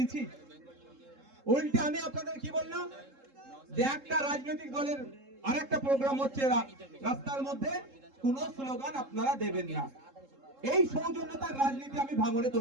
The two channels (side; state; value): left; late; 3.7 ms